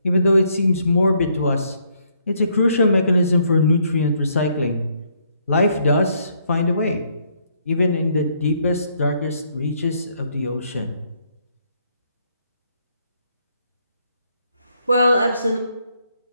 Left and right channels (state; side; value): inverted; both; correlation -0.71